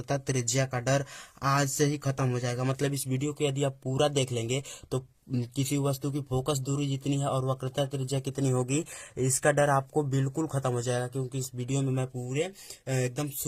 त्रिज्या का डर आज से ही खत्म हो जाएगा। मतलब इस वीडियो को यदि आप पूरा देख लेंगे तो किसी वस्तु की फोकस दूरी जितनी है और वक्रता त्रिज्या कितनी होगी, इसका डर आपको बिल्कुल खत्म हो जाएगा। क्योंकि इस वीडियो में मैं पूरे एकदम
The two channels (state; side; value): identical; both; correlation 1.00